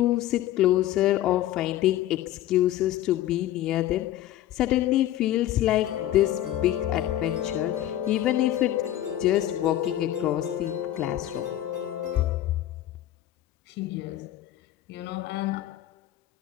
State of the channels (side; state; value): right; quieter; 13.2 dB